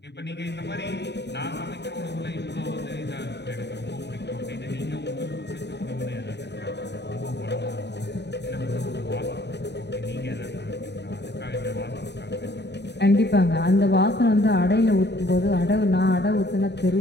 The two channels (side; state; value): right; late; 0.50 ms